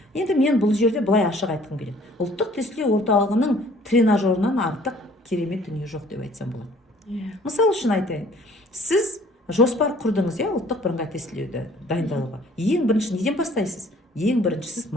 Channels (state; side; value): normal; both; correlation 0.55